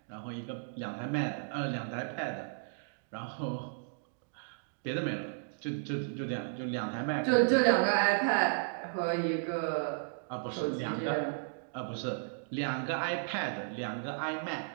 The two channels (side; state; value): left; silent; digital silence